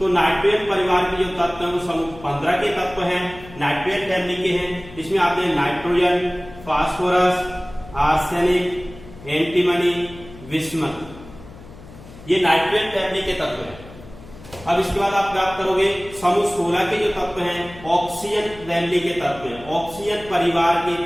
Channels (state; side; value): noise; left; hum, 18 dB below the sound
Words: नाइट्रोजन परिवार के जो तत्व हैं वो समूह 15 के तत्व हैं, नाइट्रोजन फैमिली के हैं। इसमें आते हैं नाइट्रोजन, फास्फोरस, आर्सेनिक, एंटीमनी, विस्मत। ये नाइट्रोजन फैमिली के तत्व हैं। अब इसके बाद आप प्राप्त करोगे समूह 16 के जो तत्व हैं ऑक्सीजन फैमिली के तत्व हैं, ऑक्सीजन परिवार के